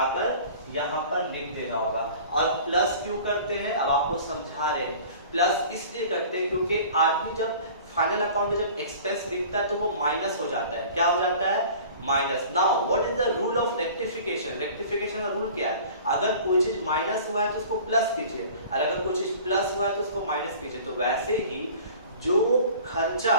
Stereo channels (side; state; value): both; inverted; correlation -0.44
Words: यहाँ पर लिख देना होगा। और प्लस क्यों करते हैं, अब आपको समझा रहे हैं। प्लस इसलिए करते हैं क्योंकि आदमी जब फाइनल अकाउंट में जब एक्सपेंस लिखता है तो वो माइनस हो जाता है, क्या हो जाता है, minus. Now what is the rule of rectification, rectification का रूल क्या है, अगर कोई चीज माइनस हुआ है तो उसको प्लस कीजिए और अगर कोई चीज प्लस हुआ है तो उसको माइनस कीजिए। तो वैसे ही जो खर्चा,